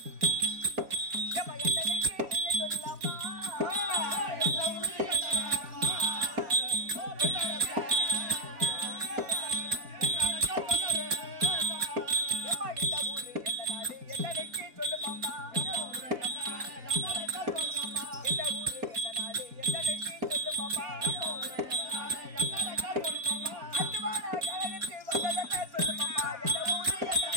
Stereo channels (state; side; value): late; left; 4.1 ms